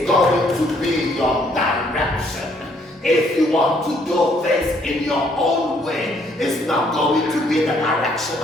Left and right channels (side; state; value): both; normal; correlation 0.67